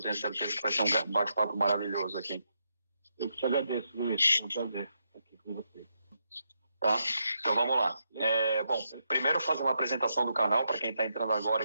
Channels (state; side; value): inverted; both; correlation -0.82